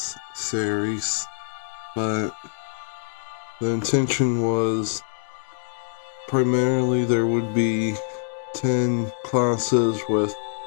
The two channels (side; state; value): right; silent; digital silence